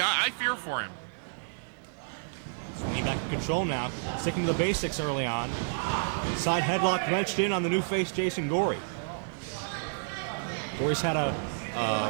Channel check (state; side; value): silent; left; 58 dB below the other